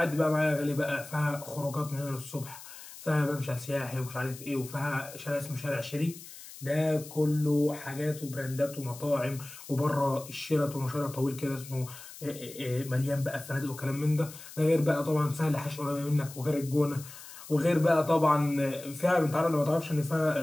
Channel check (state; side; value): noise; left; hiss, 15 dB below the sound